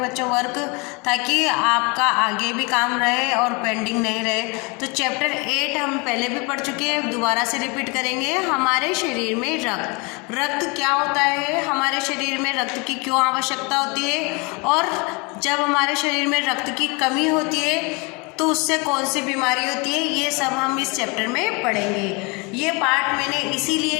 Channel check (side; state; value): right; quieter; 29.5 dB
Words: बच्चों वर्क, ताकि आपका आगे भी काम रहे और पेंडिंग नहीं रहे। तो चैप्टर 8 हम पहले भी पढ़ चुके हैं, दोबारा से रिपीट करेंगे। हमारे शरीर में रक्त क्या होता है, हमारे शरीर में रक्त की क्यों आवश्यकता होती है, और जब हमारे शरीर में रक्त की कमी होती है तो उससे कौन सी बीमारी होती है, ये सब हम इस चैप्टर में पढ़ेंगे। ये पार्ट मैंने इसीलिए